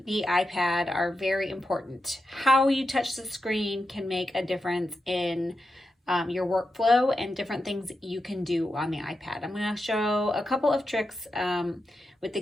the iPad are very important. How you touch the screen can make a difference in your workflow and different things you can do on the iPad. I'm going to show a couple of tricks with the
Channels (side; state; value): both; normal; correlation 0.88